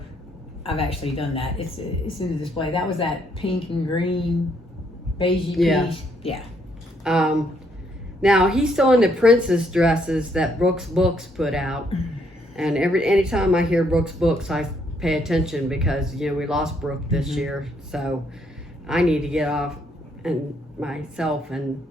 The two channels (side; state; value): both; normal; correlation 0.71